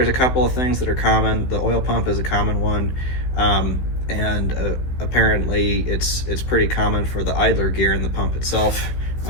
a couple of things that are common. The oil pump is a common one, and apparently it's pretty common for the idler gear in the pump itself,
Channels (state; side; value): late; right; 16 ms